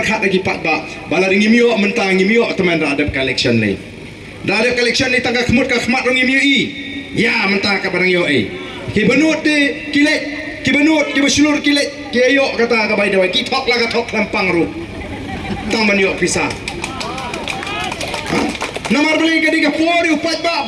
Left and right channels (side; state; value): both; identical; correlation 1.00